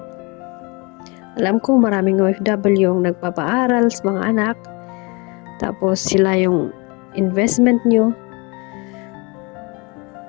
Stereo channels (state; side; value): quieter; right; 28.6 dB